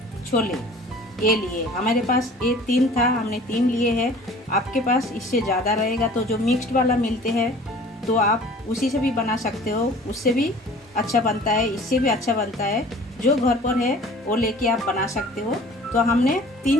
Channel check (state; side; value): normal; both; correlation 0.47